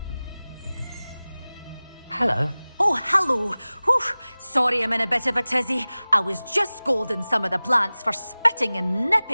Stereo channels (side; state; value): both; inverted; correlation -0.98